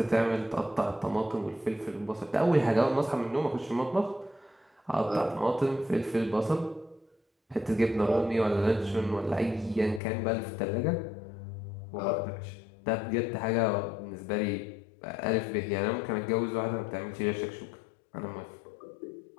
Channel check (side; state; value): right; drops out; at 10.0 s